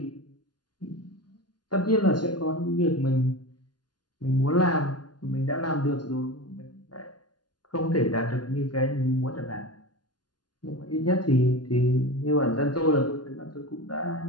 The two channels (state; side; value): late; right; 0.70 ms